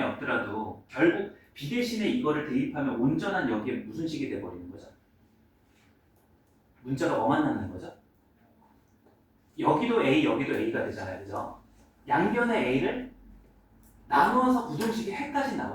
없더라도 결국 B 대신에 이거를 대입하면 온전한 여기에 무슨 식이 돼버리는 거죠? 문자가 뭐만 남는 거죠? 여기도 A, 여기도 A가 되잖아요, 그죠? 양변의 A를 나누어서 부등식이 해까지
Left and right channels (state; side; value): identical; both; correlation 1.00